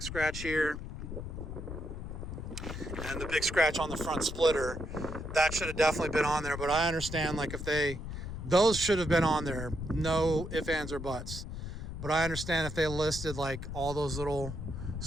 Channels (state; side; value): noise; left; rumble, 7 dB below the sound